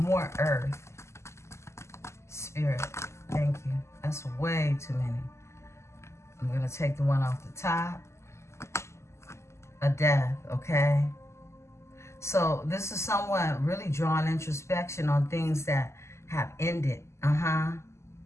Earth. Spirit. Thank you. That's way too many. I'm going to take the one off the top. A death, okay? So this is someone really drawing introspection on things that have ended.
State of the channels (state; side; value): late; right; 0.13 ms